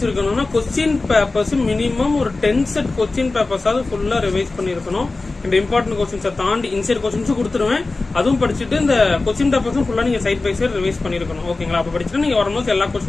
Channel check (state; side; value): quieter; right; 3.5 dB